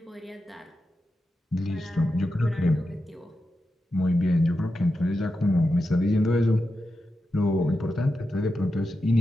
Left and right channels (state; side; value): normal; both; correlation 0.89